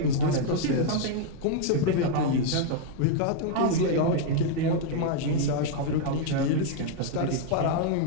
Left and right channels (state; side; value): different; both; correlation 0.00